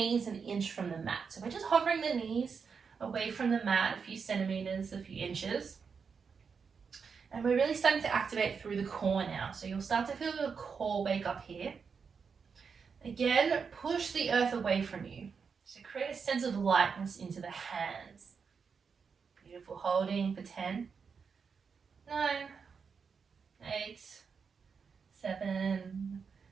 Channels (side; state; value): left; quieter; 5.8 dB